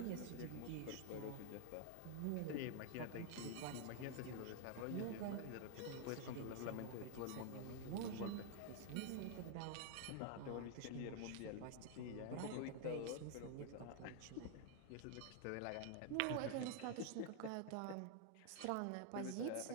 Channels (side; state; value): both; different; correlation 0.00